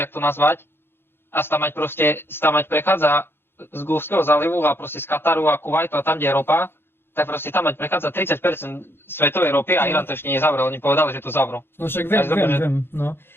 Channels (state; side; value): late; right; 0.11 ms